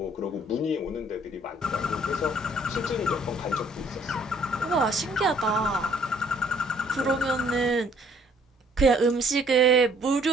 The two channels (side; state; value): both; normal; correlation 0.60